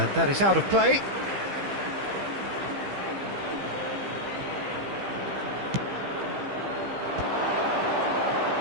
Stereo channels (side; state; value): left; late; 15 ms